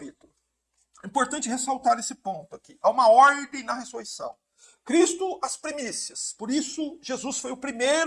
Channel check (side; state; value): both; identical; correlation 1.00